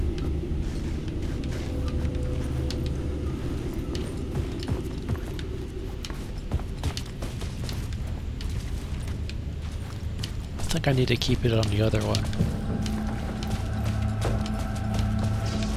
I think I need to keep it on the other one.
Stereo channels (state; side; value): identical; both; correlation 1.00